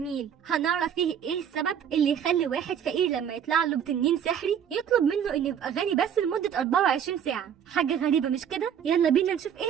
هنعرف فيه ايه السبب اللي يخلي واحد فقير لما يطلع له بتنين سحري يطلب منه انه يبقى غني بس لمدة 24 ساعة. حاجة غريبة مش كده؟ يلا بينا نشوف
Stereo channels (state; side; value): quieter; left; 8.5 dB